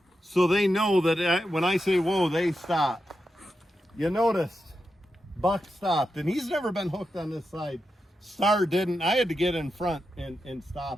so they know that when I say whoa, they stop. You noticed Buck stopped, and he's never been hooked on this side. Star didn't. I had to get in front and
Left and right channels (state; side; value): normal; both; correlation 0.88